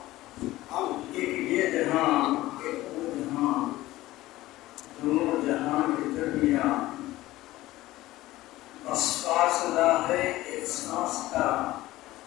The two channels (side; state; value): right; quieter; 16.9 dB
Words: ایک یہ جہاں ایک وہ جہاں، دونوں جہاں کے درمیان بس فاصلہ ہے ایک سانس کا،